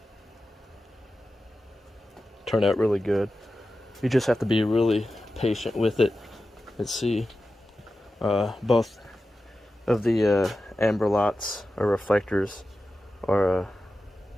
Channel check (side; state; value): both; normal; correlation 0.93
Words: Turn out really good. You just have to be really patient with it. Let's see. Both of the amber lights or reflectors are